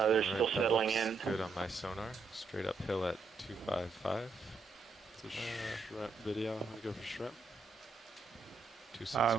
still settling in. Good on my sonar. Straight uphill at 255. It's a shrimp video. I'm gonna go for shrimp.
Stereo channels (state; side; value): quieter; left; 4.1 dB